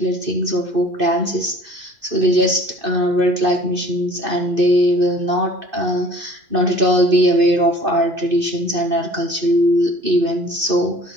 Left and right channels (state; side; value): late; left; 2.6 ms